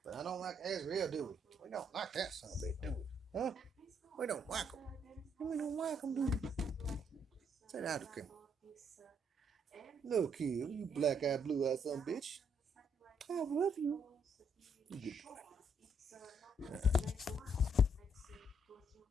But I don't like Azrael, do we? We don't like that son of a bitch, do we? Huh? We don't like him. We don't like him, do we? Say that to him. Look here, you black-eyed, blue-eyed son of a bitch. I love you. You good boy.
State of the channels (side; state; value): both; normal; correlation 0.71